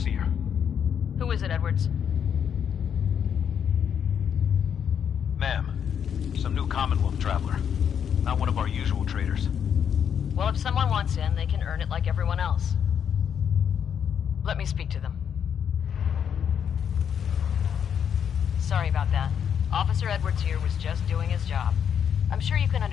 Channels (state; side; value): quieter; right; 8.1 dB